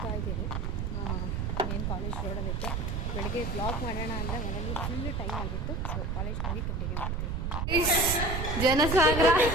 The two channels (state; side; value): noise; right; rumble, 1 dB below the sound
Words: ಇದ್ದೀವಿ. ಏನು ಕಾಲೇಜ್ ರೋಡಲ್ಲಿತ್ತು. ಬೆಳಗ್ಗೆ ಬ್ಲಾಗ್ ಮಾಡೋಣ ಅಂದರೆ ಮನೆಗೆ ಫುಲ್ ಟೈಮ್ ಆಗಿತ್ತು. ಸೊ ಕಾಲೇಜ್ ಹೋಗಿ ಕಂಟಿನ್ಯೂ ಮಾಡ್ತೀವಿ. ಜನಸಾಗರ